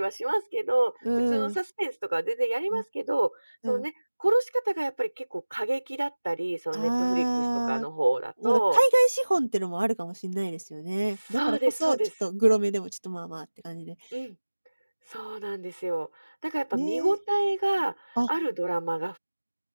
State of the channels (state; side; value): inverted; both; correlation -1.00